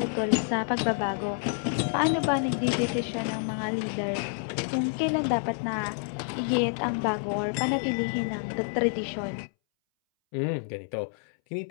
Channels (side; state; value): right; silent; 59 dB below the other